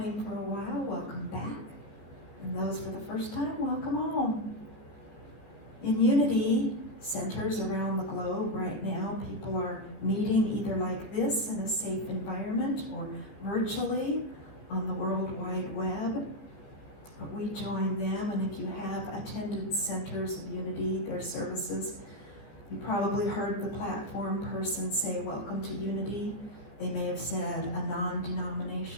for a while, welcome back. And those for the first time, welcome home. In Unity centers around the globe right now, people are meeting either like this in a safe environment or virtually on the World Wide Web. But we join them, and if you have attended centers of Unity, their services, you probably heard the platform person say, welcome to Unity. They may have said a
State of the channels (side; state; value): right; late; 14 ms